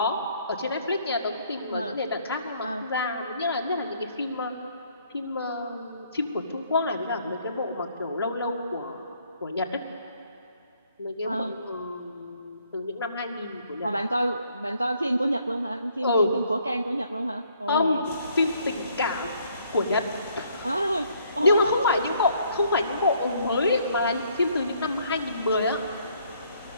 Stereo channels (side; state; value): both; inverted; correlation -0.66